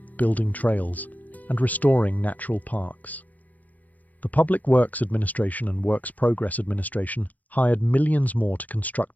building trails, and restoring natural parks. The Public Works Administration and Works Progress Administration hired millions more to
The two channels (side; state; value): right; late; 0.079 ms